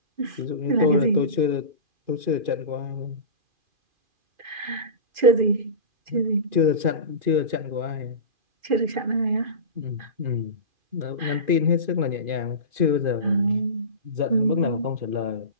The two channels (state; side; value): late; left; 2.5 ms